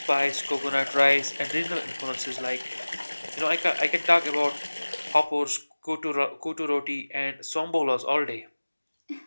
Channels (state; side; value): inverted; both; correlation -1.00